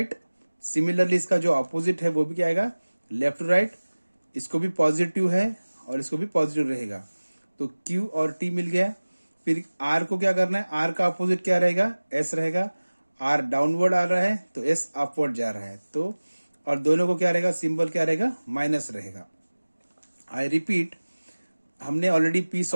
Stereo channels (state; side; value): inverted; both; correlation -1.00